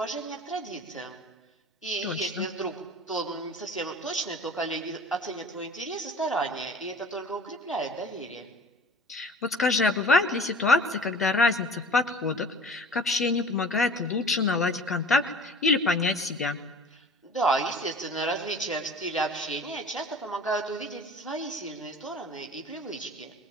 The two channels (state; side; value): normal; both; correlation 0.43